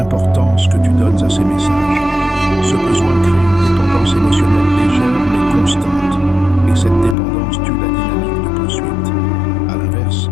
que tu donnes à ses messages. Ce besoin crée une dépendance émotionnelle légère mais constante, et cette dépendance tue la dynamique de poursuite. À l'inverse,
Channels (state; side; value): drops out; right; at 7.2 s